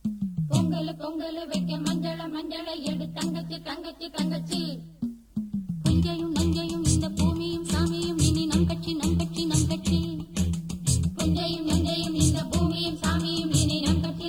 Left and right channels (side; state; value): both; identical; correlation 1.00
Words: பொங்கல் பொங்கல் வைக்க மஞ்சள மஞ்சள எடு தங்கச்சி தங்கச்சி தங்கச்சி. புஞ்சையும் நஞ்சையும் இந்த பூமியும் சாமியும் இனி நம் கட்சி நம் கட்சி நம் கட்சி. புஞ்சையும் நஞ்சையும் இந்த பூமியும் சாமியும் இனி நம் கட்சி